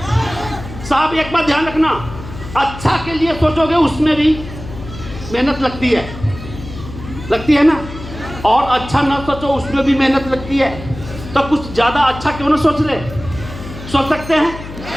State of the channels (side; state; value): left; noise; hum, 12 dB below the sound